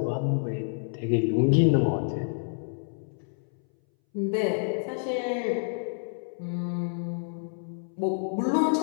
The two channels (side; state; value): right; silent; 59 dB below the other